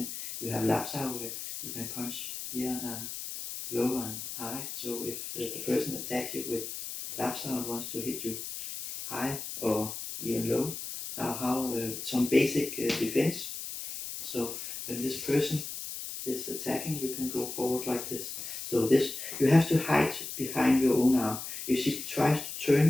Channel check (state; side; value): noise; left; hiss, 7 dB below the sound